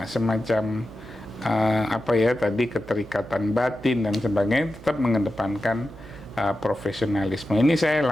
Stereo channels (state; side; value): noise; right; hum, 18 dB below the sound